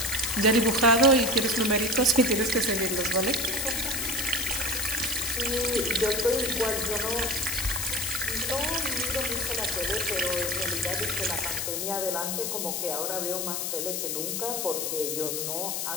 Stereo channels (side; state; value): left; noise; hiss, 1 dB below the sound